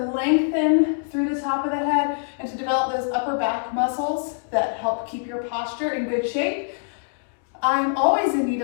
lengthen through the top of the head, and to develop those upper back muscles that help keep your posture in good shape. I'm always in need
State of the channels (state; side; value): silent; right; digital silence